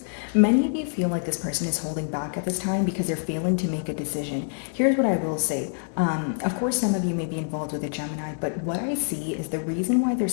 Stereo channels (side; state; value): right; silent; digital silence